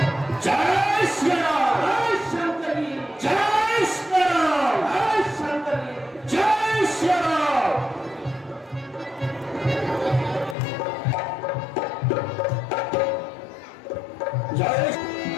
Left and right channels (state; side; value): drops out; right; at 10.6 s